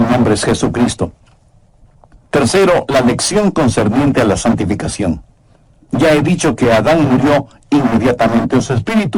nombre es Jesucristo. Tercero, la lección concerniente a la santificación. Ya he dicho que Adán murió inmediatamente en su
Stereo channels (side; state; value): both; identical; correlation 1.00